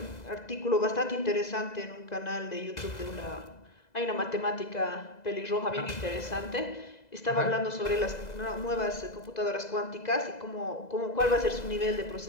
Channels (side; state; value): right; late; 2.0 ms